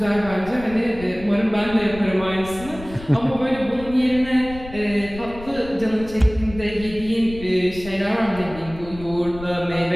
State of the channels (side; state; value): left; noise; rumble, 15 dB below the sound